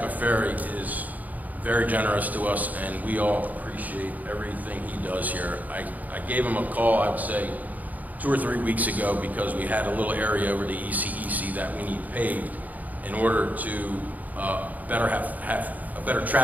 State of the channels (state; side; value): late; left; 0.079 ms